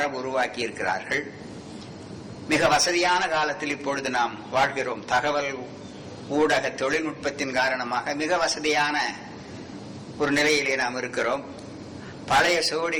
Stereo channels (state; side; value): identical; both; correlation 1.00